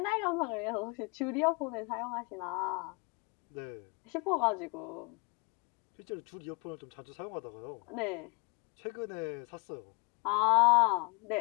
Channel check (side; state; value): right; quieter; 30.3 dB